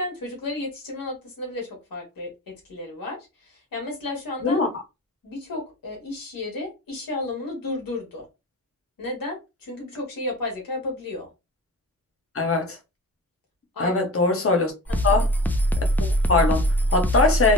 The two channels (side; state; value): both; normal; correlation 0.35